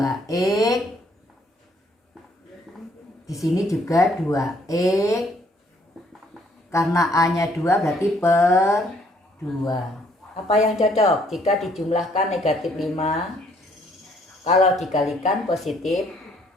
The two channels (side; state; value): both; normal; correlation 0.65